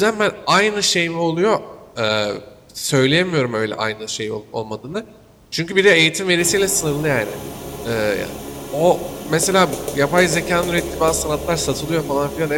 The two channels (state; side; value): identical; both; correlation 1.00